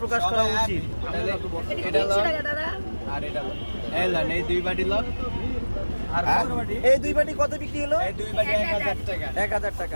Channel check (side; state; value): both; inverted; correlation -1.00